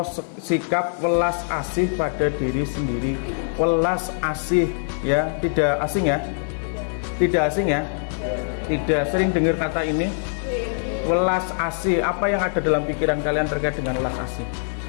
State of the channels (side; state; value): right; silent; digital silence